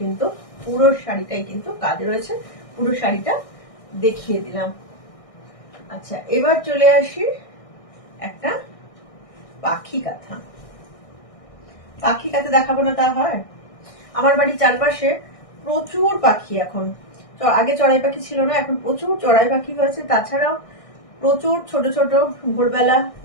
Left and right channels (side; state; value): right; late; 1.6 ms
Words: কিন্তু পুরো শাড়িটাই কিন্তু কাজ রয়েছে, পুরো শাড়িটা দেখিয়ে দিলাম। আচ্ছা, এবার চলে আসি একটা পাখি কাঁথা। পাখি কাঁথা দেখাবো না তা হয়? আমার বাড়ির চারপাশে প্রচুর পাখি এখন, আগে চড়াই পাখি ছিল না, এখন প্রচুর চড়াই পাখি হয়েছে, তাছাড়াও প্রচুর ছোট ছোট ভোরবেলা